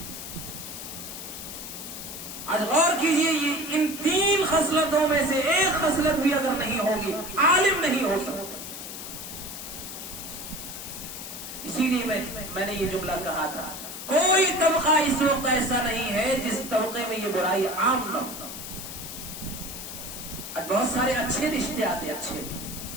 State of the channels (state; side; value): noise; left; hiss, 9 dB below the sound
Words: آج غور کیجئے، یہ ان 3 خصلتوں میں سے ایک خصلت بھی اگر نہیں ہوگی عالم نہیں ہو سکتا. اسی لیے میں نے یہ جملہ کہا تھا، کوئی طبقہ اس وقت ایسا نہیں ہے جس طبقے میں یہ برائی عام نہ ہو. آج بہت سارے اچھے رشتے آتے، اچھے،